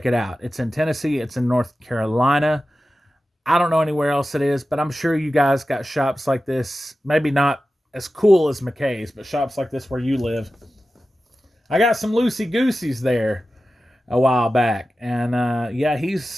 it out. It's in Tennessee. It's in North Carolina. I don't know anywhere else it is, but I'm sure you guys got shops like this. Maybe not as cool as McKay's, but shops like this where you live. I got some loosey-gooseys there a while back. And, yeah,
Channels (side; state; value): both; normal; correlation 0.94